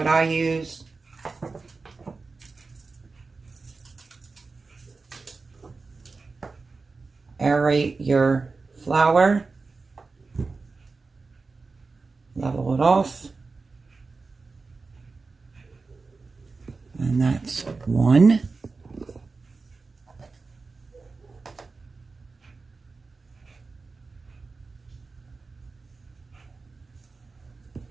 I use. Aerate your flour. Level it off. And that's 1.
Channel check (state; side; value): quieter; left; 4.1 dB